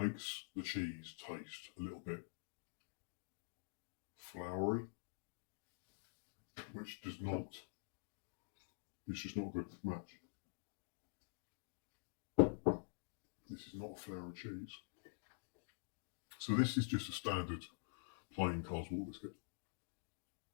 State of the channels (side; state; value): right; silent; digital silence